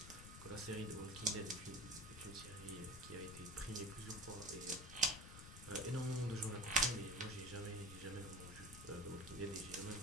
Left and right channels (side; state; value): left; noise; rumble, 12 dB below the sound